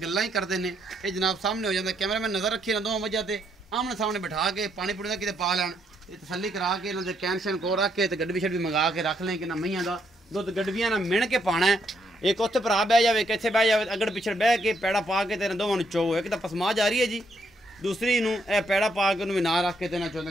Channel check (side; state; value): both; normal; correlation 0.74